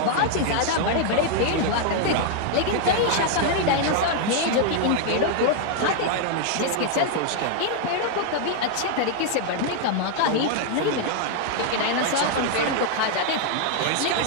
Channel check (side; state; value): both; different; correlation 0.00